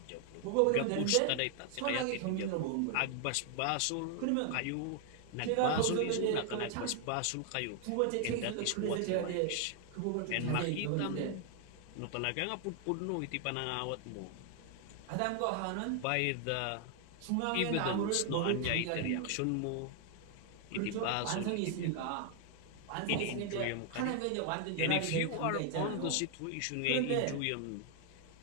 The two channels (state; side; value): different; both; correlation 0.00